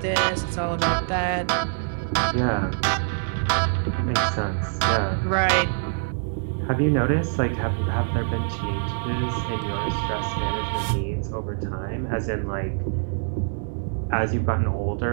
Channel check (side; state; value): left; silent; digital silence